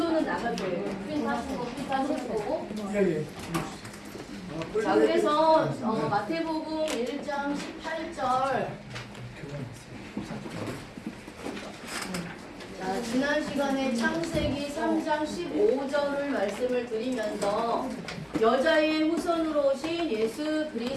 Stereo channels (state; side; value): identical; both; correlation 1.00